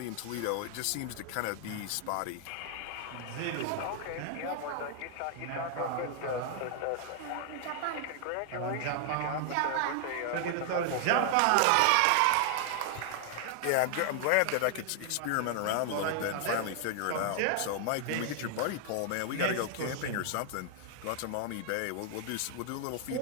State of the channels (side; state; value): both; different; correlation 0.00